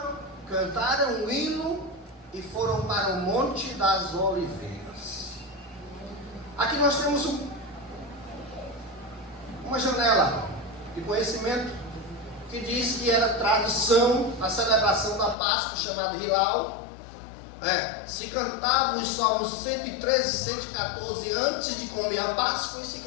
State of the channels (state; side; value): drops out; right; at 15.4 s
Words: cantaram um hino e foram para o Monte das Oliveiras. Aqui nós temos uma janela de conhecimento que diz que era tradição a celebração da Páscoa, chamada Hilal. Se cantavam os salmos 113 e 114 antes de comer a Páscoa, e se